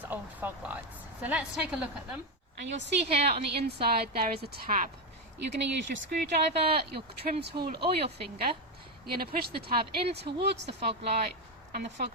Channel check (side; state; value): both; normal; correlation 0.09